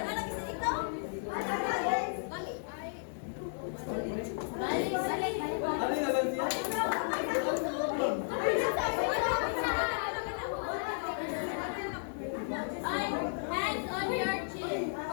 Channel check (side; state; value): right; silent; digital silence